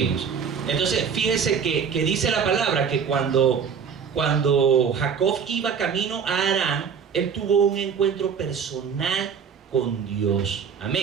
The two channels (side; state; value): left; quieter; 6.7 dB